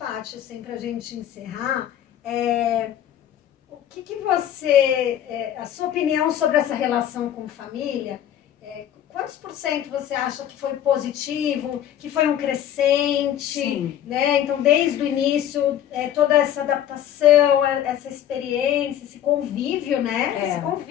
assim, pra gente encerrar, o que você, a sua opinião sobre essa relação com família, quantos % você acha que foi positivo, que foi um crescente, né? Então, desde o início, toda essa adaptação, essa experiência, esse convívio, né? Esse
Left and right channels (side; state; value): right; quieter; 10.8 dB